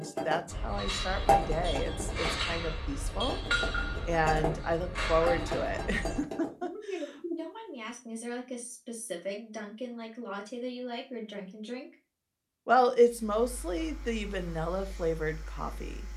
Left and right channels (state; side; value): identical; both; correlation 1.00